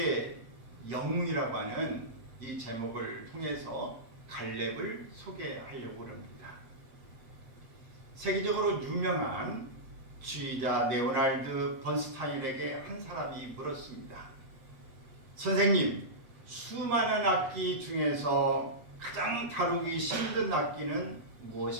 영웅이라고 하는 이 제목을 통해서 갈렙을 소개하려고 합니다. 세계적으로 유명한 지휘자 레오날드 번스타인에게 한 사람이 물었습니다. 선생님, 수많은 악기 중에서 가장 다루기 힘든 악기는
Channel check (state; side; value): late; left; 7.6 ms